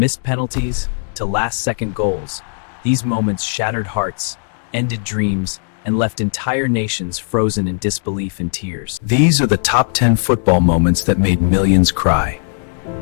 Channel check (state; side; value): silent; right; digital silence